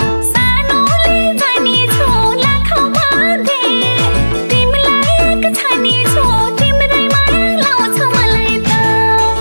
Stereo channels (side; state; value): both; inverted; correlation -1.00